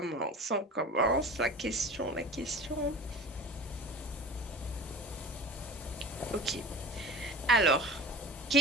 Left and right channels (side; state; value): both; normal; correlation 0.36